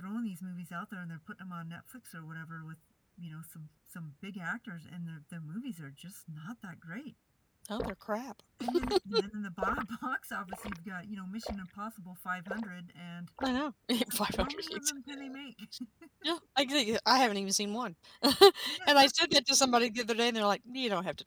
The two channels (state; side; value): identical; both; correlation 1.00